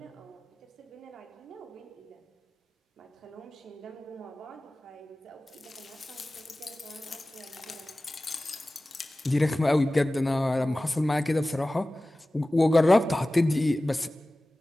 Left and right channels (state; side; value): normal; both; correlation 0.97